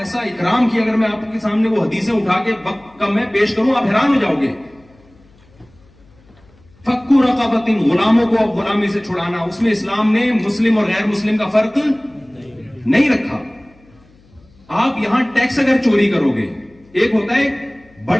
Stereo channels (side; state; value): left; noise; hum, 29 dB below the sound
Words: اکرام کیا, اگر میں آپ کے سامنے وہ حدیثیں اٹھا کے وقت کم میں پیش کروں آپ حیران ہو جاؤ گے. فکو رقبۃ, غلاموں کو اب غلامی سے چھڑانا, اس میں اسلام نے مسلم اور غیر مسلم کا فرق نہیں رکھا. آپ یہاں ٹیکس اگر چوری کرو گے, ایک ہوتا ہے